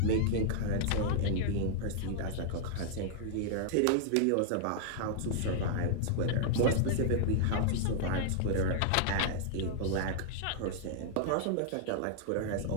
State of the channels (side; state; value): both; different; correlation -0.01